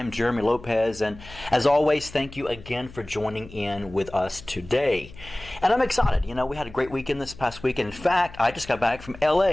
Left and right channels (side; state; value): left; noise; hum, 18 dB below the sound